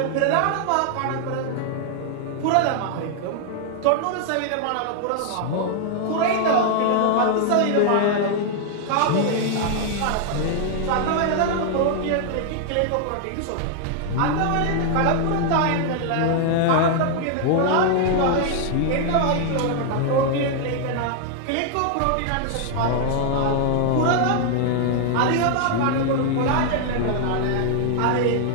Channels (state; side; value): different; both; correlation 0.00